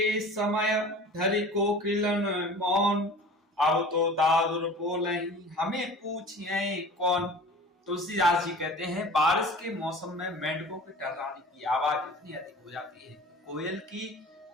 समय धरि कोकिलन मौन। अब तो दादुर बोलहीं हमें पूछिए कौन। तुलसीदास जी कहते हैं बारिश के मौसम में मेंढकों के टर्राने की आवाज इतनी अधिक हो जाती है, कोयल की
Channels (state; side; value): normal; both; correlation 0.41